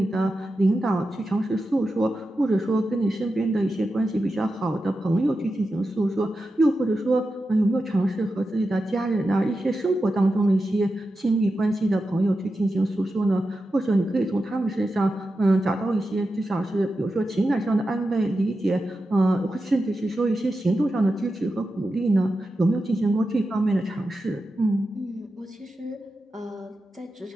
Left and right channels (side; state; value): both; normal; correlation 0.90